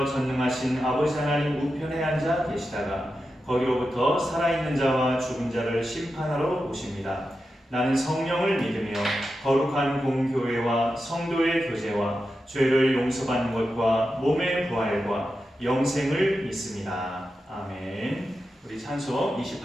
전능하신 아버지 하나님 우편에 앉아 계시다가 거기로부터 살아있는 자와 죽은 자를 심판하러 오십니다. 나는 성령을 믿으며 거룩한 공교회와 성도의 교제와 죄를 용서받는 것과 몸의 부활과 영생을 믿습니다. 아멘. 우리 찬송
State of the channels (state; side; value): normal; both; correlation 0.90